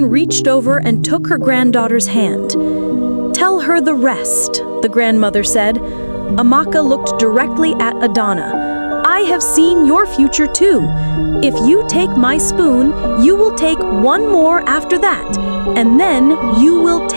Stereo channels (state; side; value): inverted; both; correlation -1.00